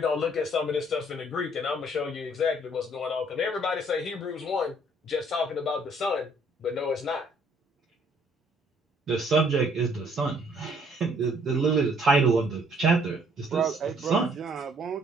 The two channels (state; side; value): normal; both; correlation 0.63